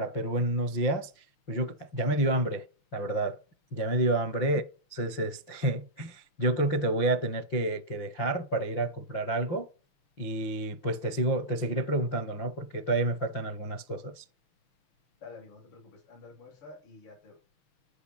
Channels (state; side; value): late; right; 5.8 ms